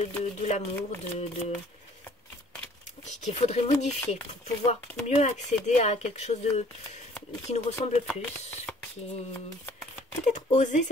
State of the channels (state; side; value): normal; both; correlation 0.56